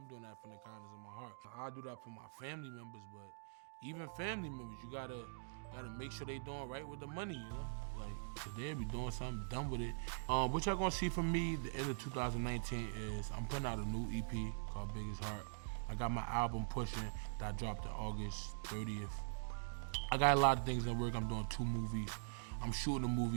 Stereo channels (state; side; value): silent; left; digital silence